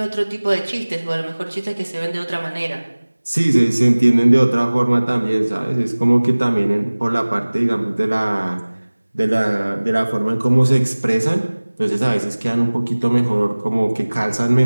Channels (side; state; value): both; inverted; correlation -1.00